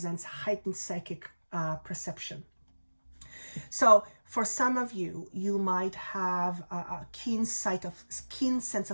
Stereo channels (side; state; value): both; inverted; correlation -1.00